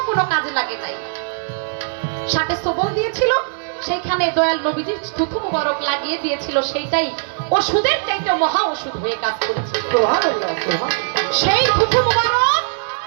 কোনো কাজে লাগে নাই। সাপে সবল দিয়েছিল, সেইখানে দয়াল নবীজি থুথু মোবারক লাগিয়ে দিয়েছিল, সেইটাই ওষুধের চাইতে মহা ওষুধ হয়ে কাজ করেছিল। সেই থুথু মোবারক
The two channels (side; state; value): left; silent; digital silence